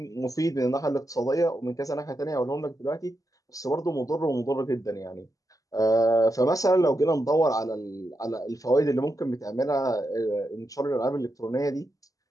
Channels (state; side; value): late; right; 0.17 ms